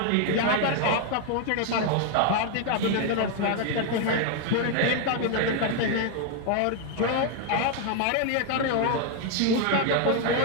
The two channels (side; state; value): both; different; correlation 0.00